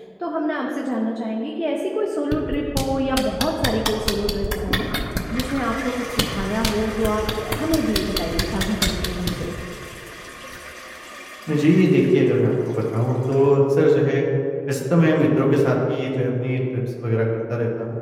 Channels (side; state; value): both; identical; correlation 1.00